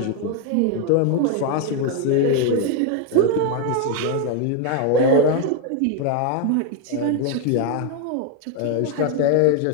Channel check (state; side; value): different; both; correlation 0.01